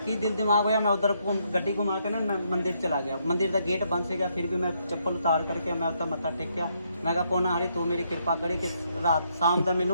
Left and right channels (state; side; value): inverted; both; correlation -0.74